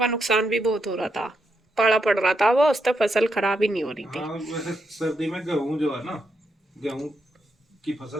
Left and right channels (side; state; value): both; normal; correlation 0.82